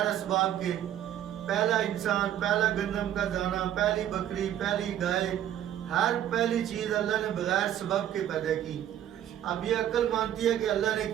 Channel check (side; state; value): left; quieter; 11.1 dB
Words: اسباب کے، پہلا انسان، پہلا گندم کا دانہ، پہلی بکری، پہلی گائے، ہر پہلی چیز اللہ نے بغیر سبب کے پیدا کی۔ اب یہ عقل مانتی ہے کہ اللہ نے